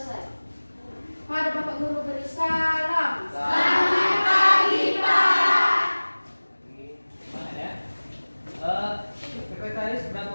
Pada Bapak Guru beri salam. Selamat pagi, Pak. Semangat ya. Sekretaris berapa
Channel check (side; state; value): both; inverted; correlation -1.00